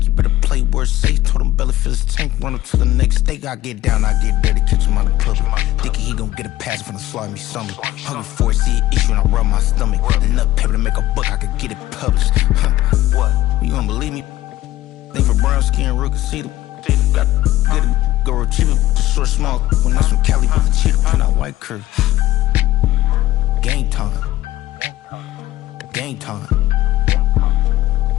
You better play where it's safe. Told him belly fill his tank, run up to the next steak. I get down, I get dirty, catch him on the public. Thinking he gon' get a pass from the slide me something. Hungry for it, see an issue and I rub my stomach. Enough paper to make a book, I could get it published. What? You gonna believe me? Think for brown skin, real can see the got get it, go retrieve it, the short small. When that's from Cali, with the cheetah print out white curve. Game time. Game time.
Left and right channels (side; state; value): right; quieter; 15.4 dB